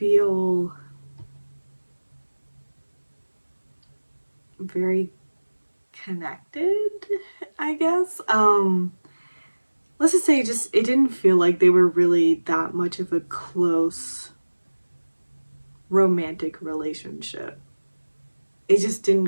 very connected, I guess. Let's just say it didn't feel like they were really that much of a close romantic relationship. It just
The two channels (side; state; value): both; inverted; correlation -1.00